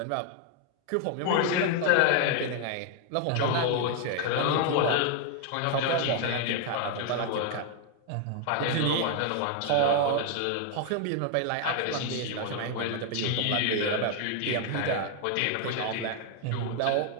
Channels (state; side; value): different; both; correlation 0.00